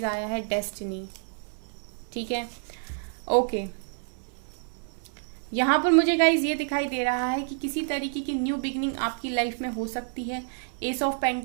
आया है डेस्टिनी, ठीक है, ओके। यहाँ पर मुझे गाइज ये दिखाई दे रहा है कि किसी तरीके की न्यू बिगनिंग आपकी लाइफ में हो सकती है। एस ऑफ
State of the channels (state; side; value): silent; left; 59 dB below the other